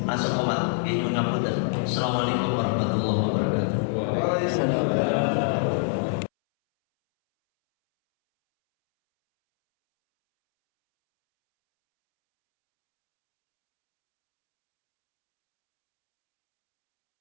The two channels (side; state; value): right; silent; 62 dB below the other